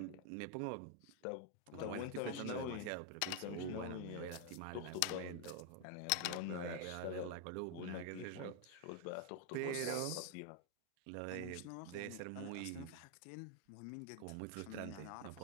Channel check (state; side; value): different; both; correlation 0.00